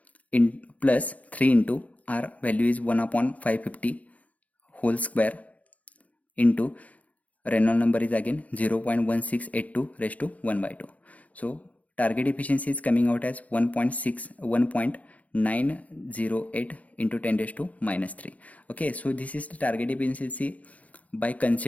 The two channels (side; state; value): right; late; 0.070 ms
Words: in plus 3 into R value is 1 upon 550 whole square into Reynolds number is again 0.1682 raised to 1 by 2. So target efficiency is coming out as 1.908 into 10 raised to minus 3. Okay, so this is the target efficiency by